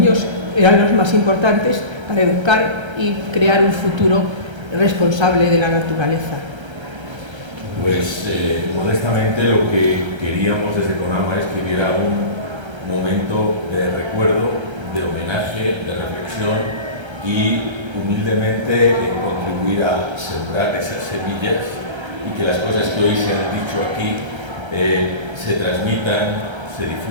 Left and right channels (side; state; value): left; late; 1.3 ms